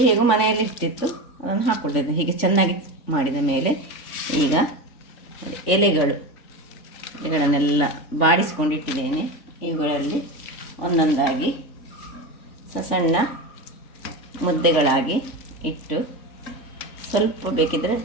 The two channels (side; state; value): right; late; 3.4 ms